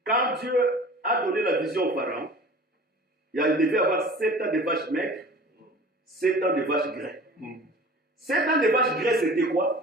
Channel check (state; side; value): normal; both; correlation 0.42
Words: Dieu a donné la vision au pharaon, il devait avoir 7 ans de vaches maigres, 7 ans de vaches graies. 7 ans de vaches graies, c'était